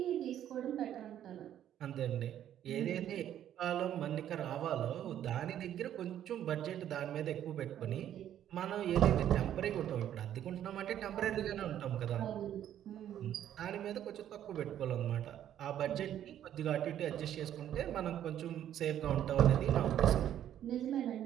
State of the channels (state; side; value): quieter; left; 10.9 dB